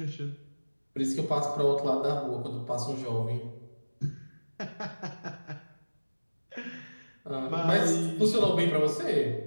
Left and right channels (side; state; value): both; inverted; correlation -1.00